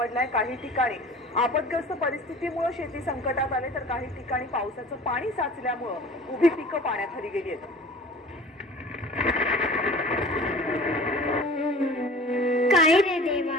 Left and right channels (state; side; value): normal; both; correlation 0.43